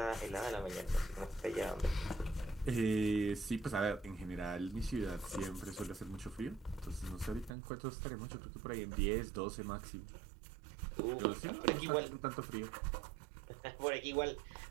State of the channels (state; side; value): drops out; left; at 7.5 s